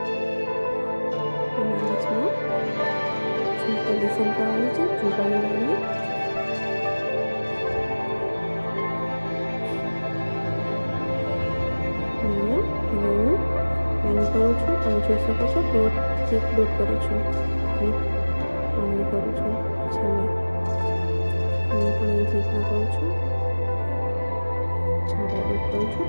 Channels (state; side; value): inverted; both; correlation -1.00